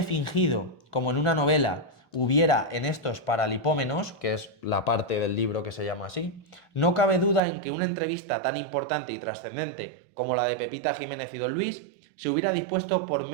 fingido, como en una novela, hubiera en estos paralipómenos, que es la parte del libro que se llama así, no cabe duda en que una entrevista tan importante y trascendente como la de Pepita Jiménez y Don Luis se hubiera dispuesto por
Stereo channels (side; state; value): left; drops out; at 7.4 s